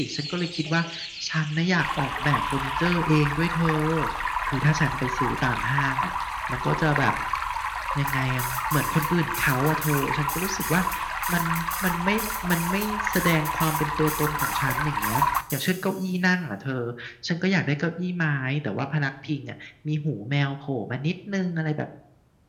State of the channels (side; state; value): both; identical; correlation 1.00